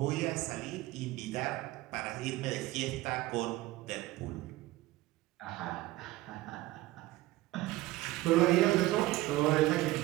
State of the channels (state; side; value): quieter; left; 18.0 dB